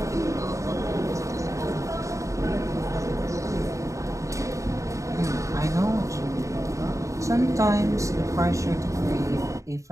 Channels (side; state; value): left; late; 0.15 ms